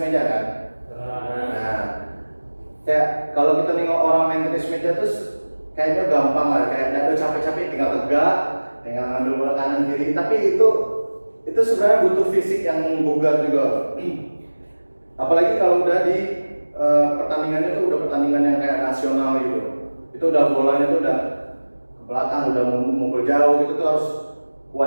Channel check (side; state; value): both; inverted; correlation -1.00